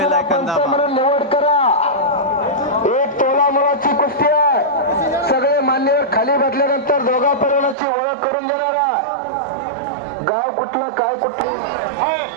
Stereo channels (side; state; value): left; drops out; at 7.8 s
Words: आयकॉन दाबा। निवड करा। एक तोला मुलाची कुस्ती आहे। सगळे मान्यवर खाली बसल्यानंतर दोघा परिवाराची ओळख करून देणारा गाव कुठलं काय कुठलं।